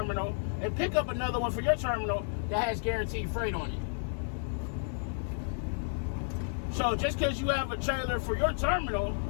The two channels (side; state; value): right; silent; digital silence